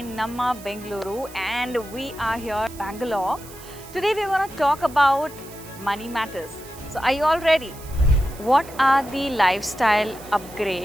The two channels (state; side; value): noise; right; hiss, 18 dB below the sound